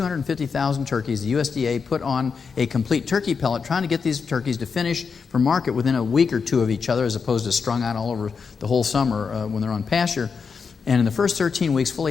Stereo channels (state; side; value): quieter; right; 5.6 dB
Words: turkeys. The USDA put on a complete turkey pellet, trying to get these turkeys to finish for market within a week or two of each other, as opposed to strung out all over the whole summer when they're on pasture. And in the first 13 weeks,